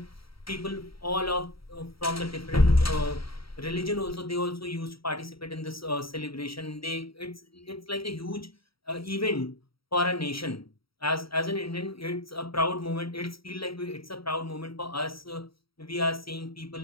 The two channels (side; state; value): right; late; 0.75 ms